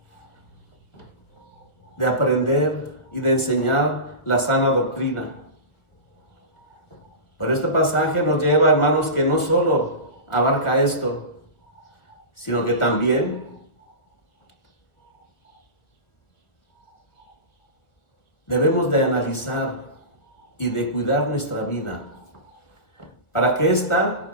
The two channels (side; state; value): right; late; 1.4 ms